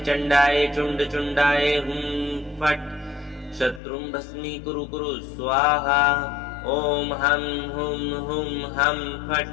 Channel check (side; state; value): right; drops out; at 3.8 s